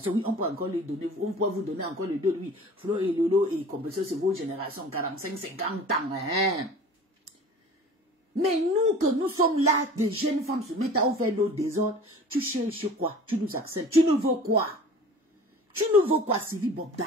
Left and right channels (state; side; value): normal; both; correlation 0.42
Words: Oui, on peut encore lui donner, on peut vous donner encore les deux. Oui, Flo et Lolo et Compression, c'est vos générations, 45, 50 ans. Hein? Mais nous, que nous sommes là, des jeunes femmes se mettent à faire nos désordres, tu cherches quoi? Tu nous acceptes. Tu nous veux quoi? Tu nous veux quoi, Sylvie